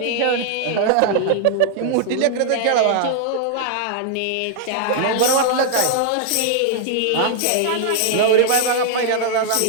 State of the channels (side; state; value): both; different; correlation 0.00